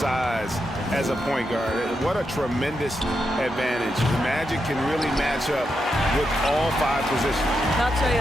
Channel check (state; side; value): normal; both; correlation 0.85